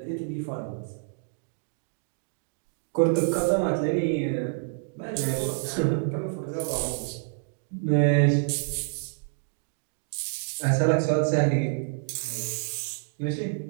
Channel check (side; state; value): left; silent; digital silence